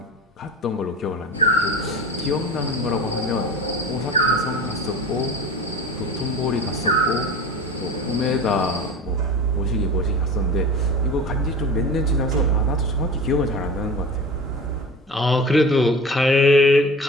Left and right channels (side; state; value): both; normal; correlation 0.34